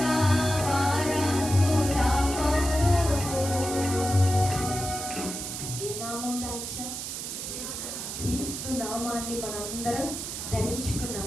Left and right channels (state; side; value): noise; right; hiss, 6 dB below the sound